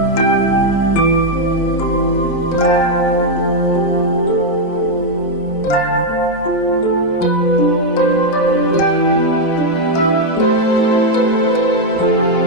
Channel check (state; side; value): late; right; 4.1 ms